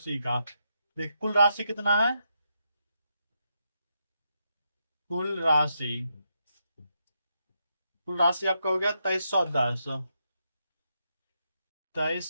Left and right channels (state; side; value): inverted; both; correlation -0.82